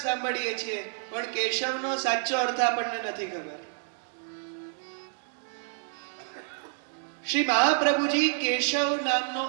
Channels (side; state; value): left; silent; digital silence